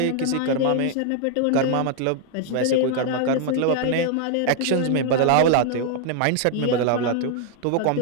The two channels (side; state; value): both; different; correlation 0.00